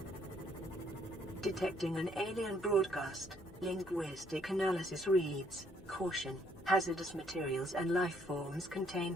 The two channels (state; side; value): normal; both; correlation 0.68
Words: Detecting an alien broadcast. Linguistic analysis reads, "Caution, hazardous materials and life forms